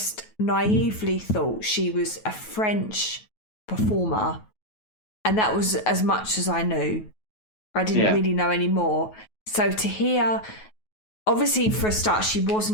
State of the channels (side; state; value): right; late; 9.3 ms